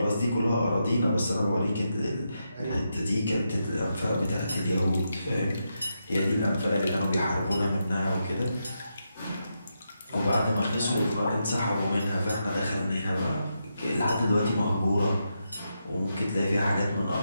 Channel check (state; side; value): inverted; both; correlation -0.85